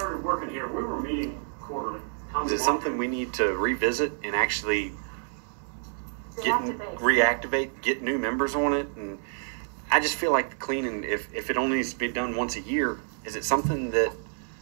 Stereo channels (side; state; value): left; silent; 59 dB below the other